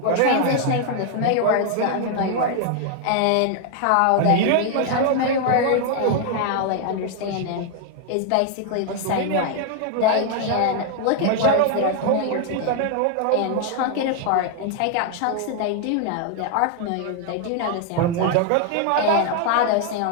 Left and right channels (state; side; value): different; both; correlation 0.00